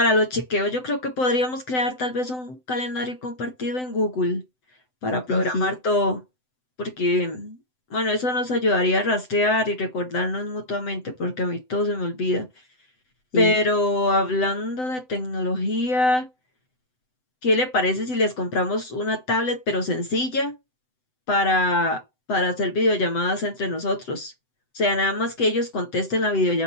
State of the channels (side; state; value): right; late; 7.9 ms